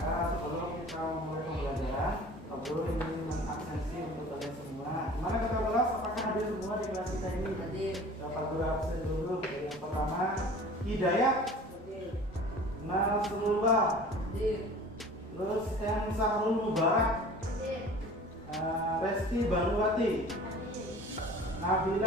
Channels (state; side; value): normal; both; correlation 0.44